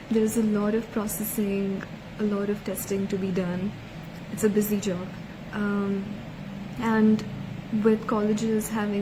There's a lot of processing, a lot of testing to be done. It's a busy job. And with colleges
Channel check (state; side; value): identical; both; correlation 1.00